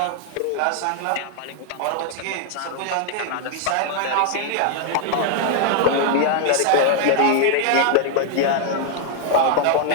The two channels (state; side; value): different; both; correlation 0.00